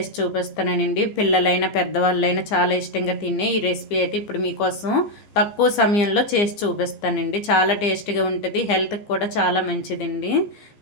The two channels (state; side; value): late; right; 15 ms